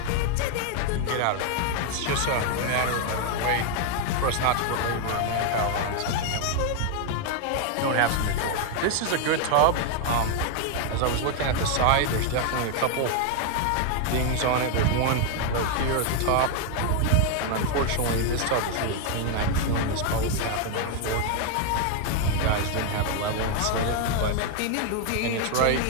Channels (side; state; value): both; different; correlation 0.00